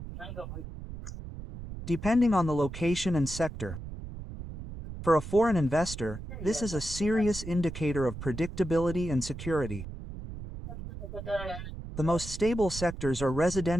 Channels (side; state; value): right; noise; rumble, 10 dB below the sound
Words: depending on the location and sector. For a foreign investor, this is a serious indicator of predictability and security. The most stable sectors are